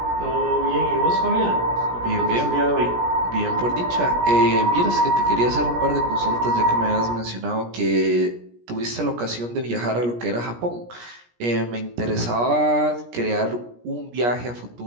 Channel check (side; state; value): left; late; 17 ms